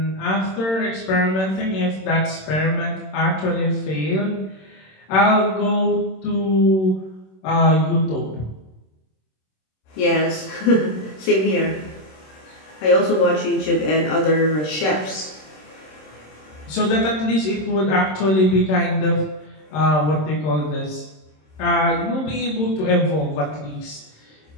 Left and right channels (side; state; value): right; late; 26 ms